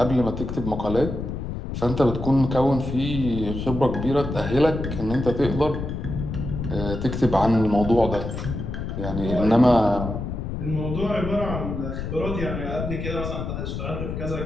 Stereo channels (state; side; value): noise; left; rumble, 5 dB below the sound